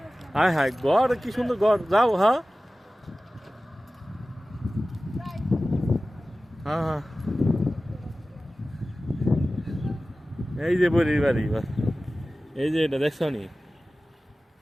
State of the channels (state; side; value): normal; both; correlation 0.96